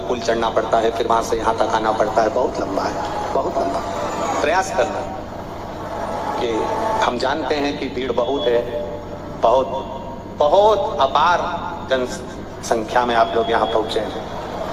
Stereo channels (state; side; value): identical; both; correlation 1.00